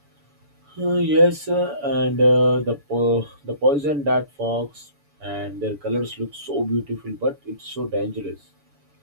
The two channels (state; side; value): late; left; 7.0 ms